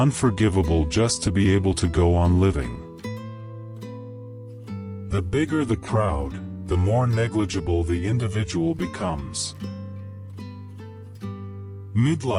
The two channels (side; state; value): both; identical; correlation 1.00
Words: just to be able to go on living. The bigger the crowd, the more negligible the individual becomes.